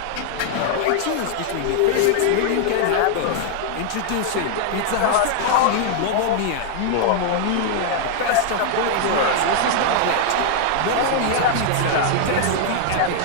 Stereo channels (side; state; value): both; different; correlation 0.00